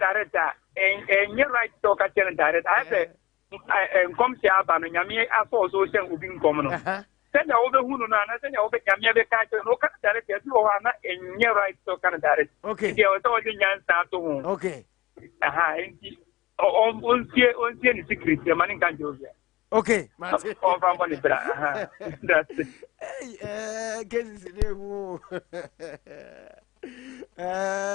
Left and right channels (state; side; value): quieter; right; 18.5 dB